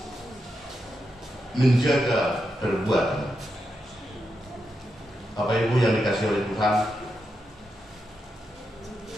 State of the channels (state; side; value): normal; both; correlation 0.86